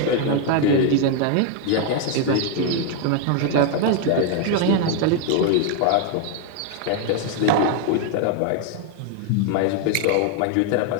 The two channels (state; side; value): different; both; correlation 0.00